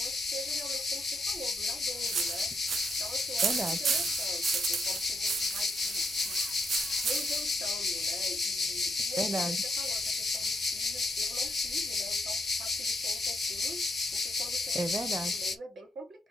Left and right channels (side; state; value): both; normal; correlation 0.78